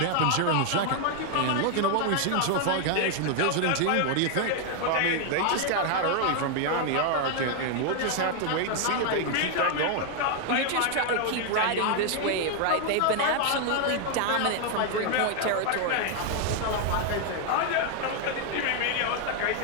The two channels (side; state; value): both; different; correlation 0.00